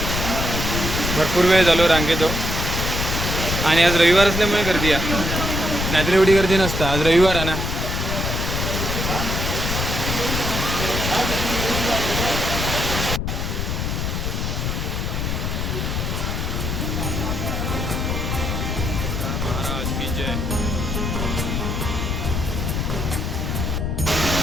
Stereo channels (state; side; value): noise; left; rumble, 1 dB below the sound